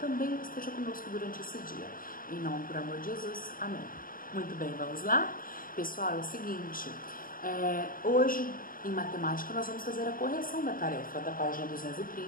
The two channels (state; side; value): late; right; 0.41 ms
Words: esteja conosco durante esse dia. Em nome, por amor de Jesus, amém. Muito bem, vamos lá? Pessoal, é o seguinte... hoje, em matemática, nós vamos fazer a correção da tarefa da página